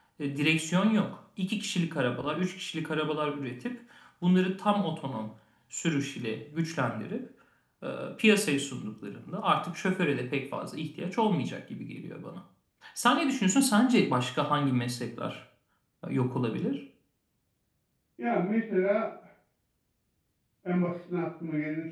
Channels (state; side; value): identical; both; correlation 1.00